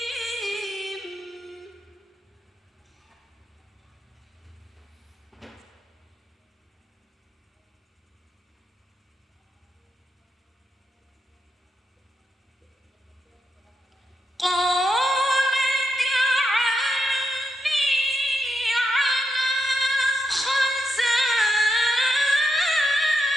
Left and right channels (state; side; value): normal; both; correlation 0.82